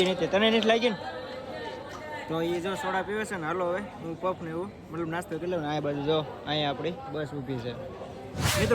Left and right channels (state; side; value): identical; both; correlation 1.00